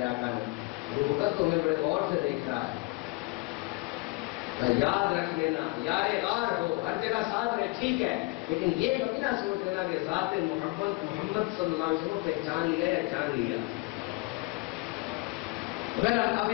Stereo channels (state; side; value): quieter; right; 24.1 dB